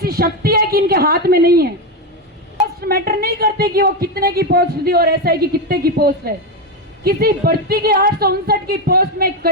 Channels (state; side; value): normal; both; correlation 0.10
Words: शक्ति है कि इनके हाथ में नहीं है? पोस्ट मैटर नहीं करते कि वो कितने की पोस्ट दी और ऐसा है कि कितने की पोस्ट है। किसी भर्ती की 859 की पोस्ट में